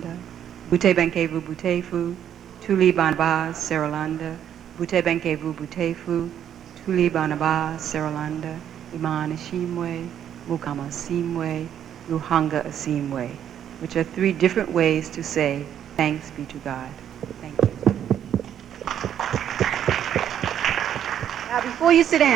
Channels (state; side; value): quieter; left; 9.7 dB